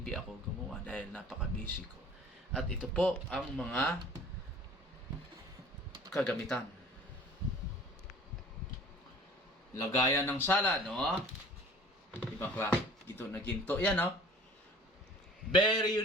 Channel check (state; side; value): normal; both; correlation 0.48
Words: ako gumawa dahil napaka-busy ko. At ito po ang mga kagamitan. Lagayan ng salad, no? Ibang klase. Ito na ginto. Yan, no? Very